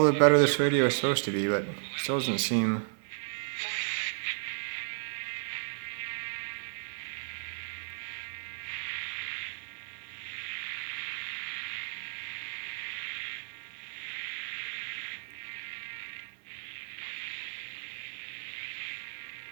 the better this radio is supposed to be, but it still doesn't seem.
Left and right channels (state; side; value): silent; left; 55 dB below the other